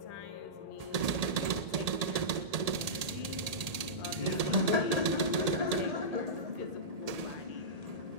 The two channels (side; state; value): left; late; 1.8 ms